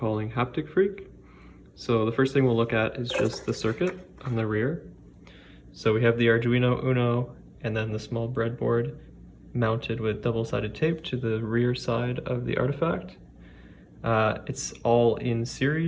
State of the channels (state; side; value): identical; both; correlation 1.00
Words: Haptic Freq. So the first thing we'll look at is just the circuit on the rear. So we have the Arduino Uno and then the small breadboard mounted with double-sided tape to the rear side of the artifact. It's all in